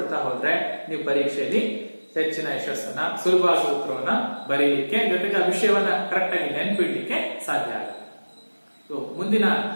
ಹೋದ್ರೆ ನೀವು ಪರೀಕ್ಷೆಯಲ್ಲಿ ಹೆಚ್ಚಿನ ಯಶಸ್ಸನ್ನ, ಸುಲಭವಾಗಿ ಉತ್ತರವನ್ನ ಬರೀಲಿಕ್ಕೆ, ಜೊತೆಗೆ ಆ ವಿಷಯವನ್ನ ಕರೆಕ್ಟ್ ಆಗಿ ನೆನ್ಪಿಡ್ಲಿಕ್ಕೆ ಸಾಧ್ಯ ಆಗುತ್ತೆ. ಮುಂದಿನ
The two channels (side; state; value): both; inverted; correlation -1.00